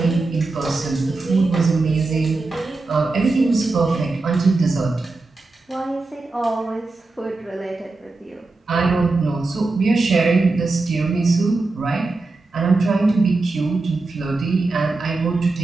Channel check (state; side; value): quieter; left; 3.5 dB